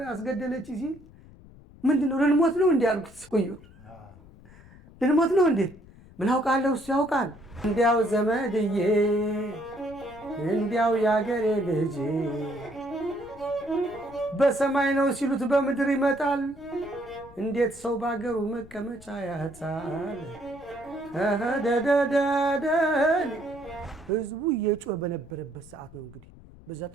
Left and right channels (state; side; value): noise; left; rumble, 22 dB below the sound